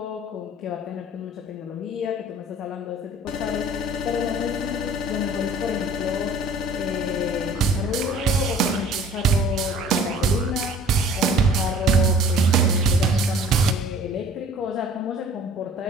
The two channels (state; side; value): normal; both; correlation 0.49